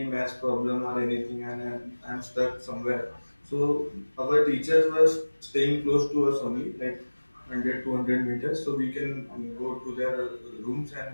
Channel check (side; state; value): both; inverted; correlation -1.00